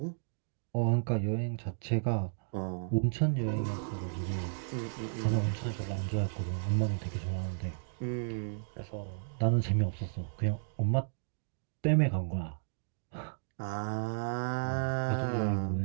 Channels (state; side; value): silent; left; digital silence